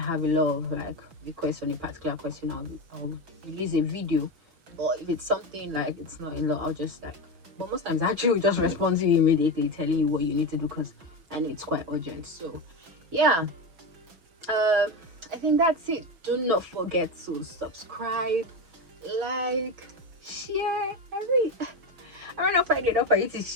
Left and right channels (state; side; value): late; left; 6.1 ms